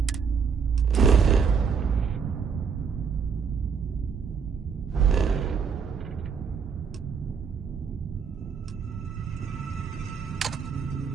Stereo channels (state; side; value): quieter; left; 6.2 dB